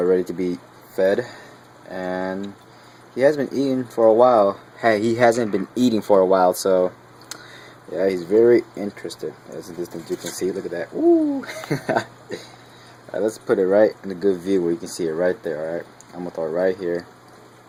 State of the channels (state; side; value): identical; both; correlation 1.00